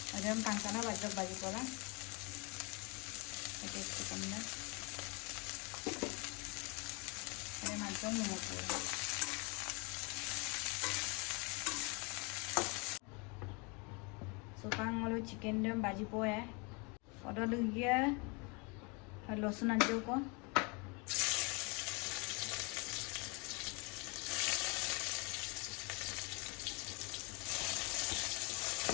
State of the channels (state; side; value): quieter; right; 30.8 dB